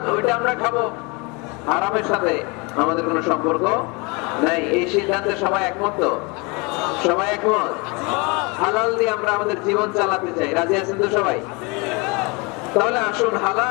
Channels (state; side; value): quieter; right; 28.7 dB